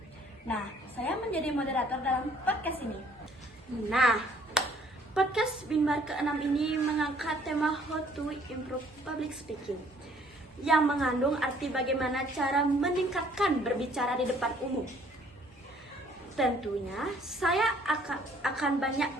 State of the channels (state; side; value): normal; both; correlation 0.60